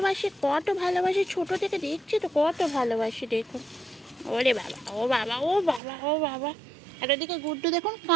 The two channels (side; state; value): left; drops out; at 5.8 s